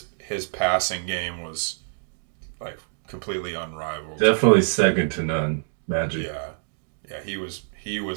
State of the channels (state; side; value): silent; left; digital silence